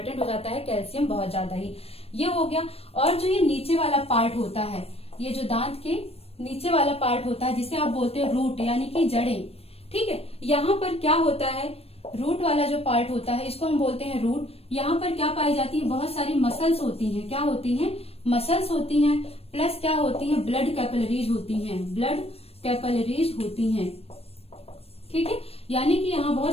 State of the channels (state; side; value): late; right; 0.29 ms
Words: हो जाता है कैल्शियम बहुत ज्यादा ही। ये हो गया। और जो ये नीचे वाला पार्ट होता है, ये जो दांत के नीचे वाला पार्ट होता है जिसे आप बोलते हो रूट यानी कि जड़ें। ठीक है, यहाँ पर क्या होता है? रूट वाला जो पार्ट होता है इसको हम बोलते हैं रूट। यहाँ पर क्या पाई जाती है? बहुत सारी मसल्स होती हैं। क्या होती हैं? मसल्स होती हैं, प्लस क्या होती हैं? ब्लड कैपिलरीज होती हैं। ब्लड कैपिलरीज होती हैं। ठीक है, यानी कि यहाँ